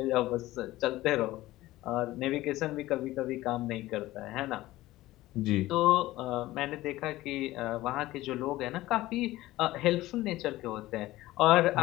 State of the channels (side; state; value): right; quieter; 17.0 dB